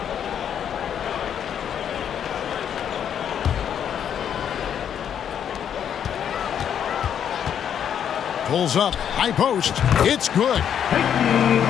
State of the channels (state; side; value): quieter; right; 8.8 dB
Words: Pulls up, high post. It's good.